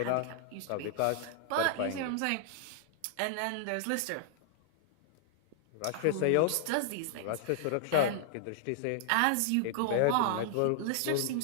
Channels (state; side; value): different; both; correlation -0.01